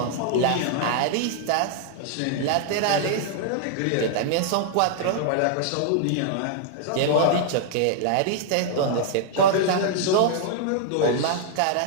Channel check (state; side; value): different; both; correlation -0.01